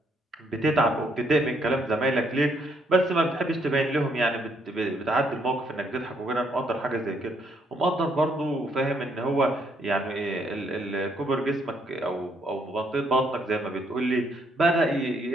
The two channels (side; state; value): both; normal; correlation 0.71